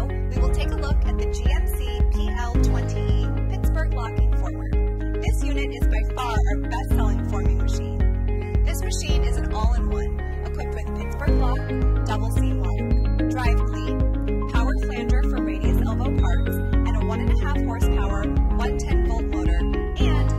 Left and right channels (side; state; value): both; identical; correlation 1.00